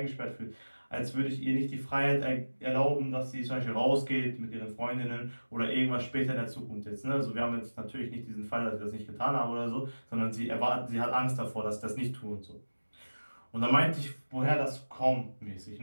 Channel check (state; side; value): inverted; both; correlation -1.00